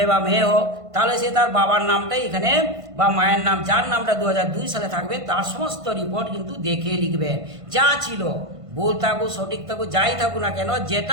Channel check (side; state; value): left; late; 1.5 ms